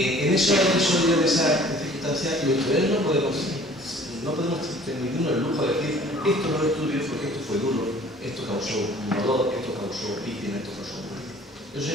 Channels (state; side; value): normal; both; correlation 0.51